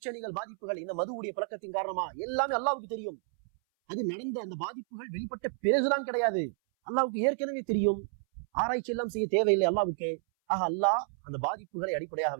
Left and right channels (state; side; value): silent; left; 57 dB below the other